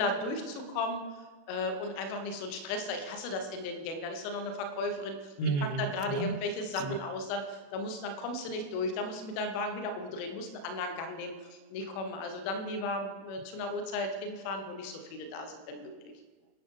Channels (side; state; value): right; late; 36 ms